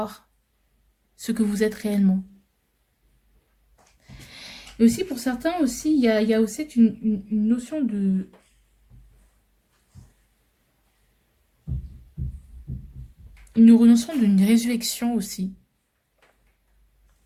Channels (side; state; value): both; identical; correlation 1.00